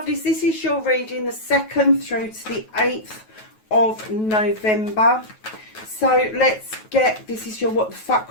this is your reading the 2nd through to the 8th of November. So let's get, this is your what the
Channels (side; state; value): right; late; 9.3 ms